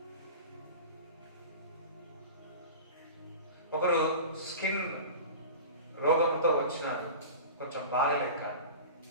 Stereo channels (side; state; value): both; inverted; correlation -0.33